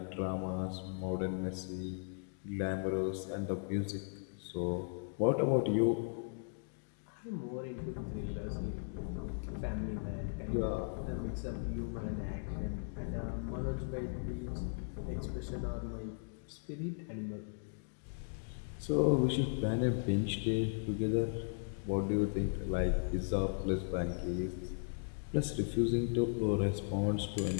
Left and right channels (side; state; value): right; silent; digital silence